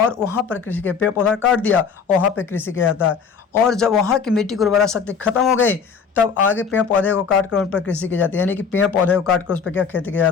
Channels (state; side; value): quieter; right; 6.2 dB